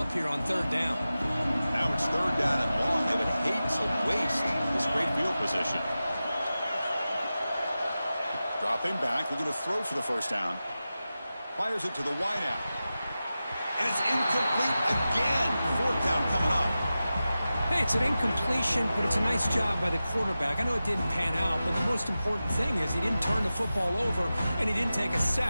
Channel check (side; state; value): both; inverted; correlation -0.94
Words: here on 3rd down. Now it's 3rd down and long. They would hate to waste this great field position. Dropping back, looking to throw for the first down. Fires it to the wideout. And it's incomplete again. 4th down coming up. Hey, it's an incompletion, but it's a nice job by the quarterback. I know it didn't pan out, but the most important thing is he didn't turn the football over and he didn't take a